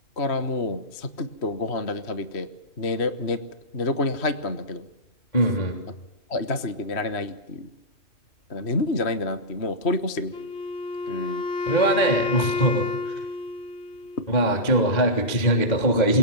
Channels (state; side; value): late; right; 3.0 ms